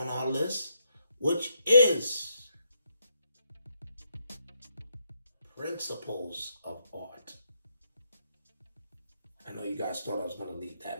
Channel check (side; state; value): both; inverted; correlation -0.77